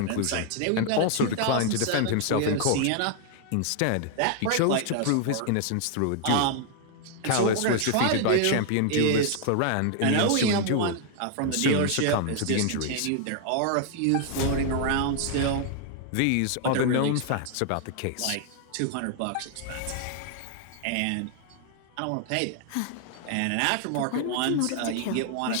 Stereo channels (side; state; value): both; different; correlation 0.00